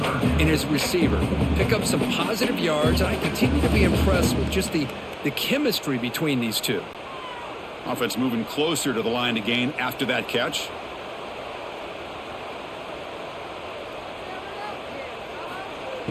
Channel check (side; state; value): both; identical; correlation 1.00